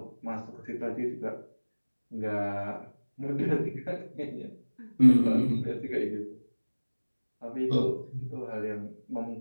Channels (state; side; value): inverted; both; correlation -1.00